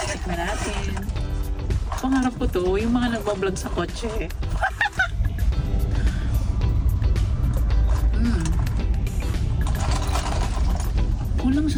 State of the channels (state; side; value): identical; both; correlation 1.00